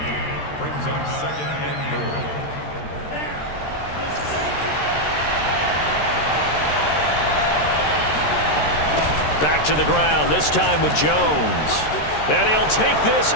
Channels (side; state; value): right; late; 13 ms